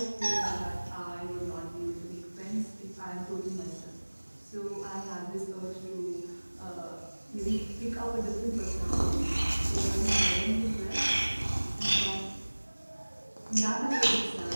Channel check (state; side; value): inverted; both; correlation -1.00